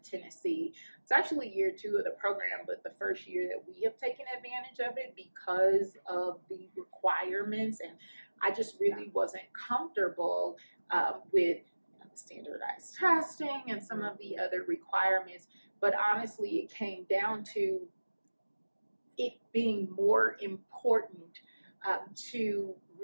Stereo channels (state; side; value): inverted; both; correlation -1.00